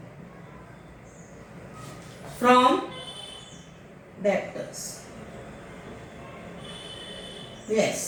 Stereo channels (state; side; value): identical; both; correlation 1.00